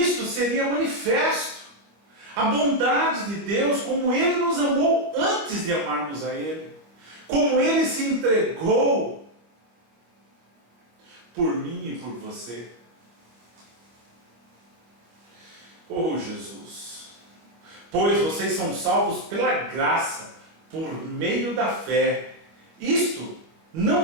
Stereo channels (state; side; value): late; left; 25 ms